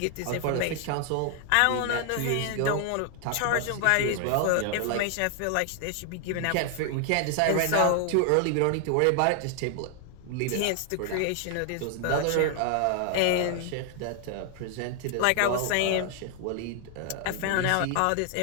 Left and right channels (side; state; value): both; different; correlation 0.00